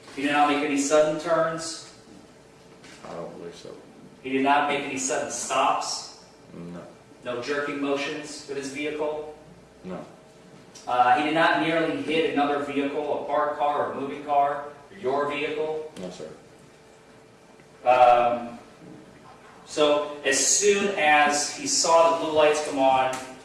He did not make any sudden turns? I don't believe so. He did not make any sudden stops? No. No jerking motions with his vehicle? No. He did not nearly hit another vehicle, a parked car or a moving car, or your vehicle? No, sir. So as soon as he saw the blue lights come on,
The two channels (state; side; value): identical; both; correlation 1.00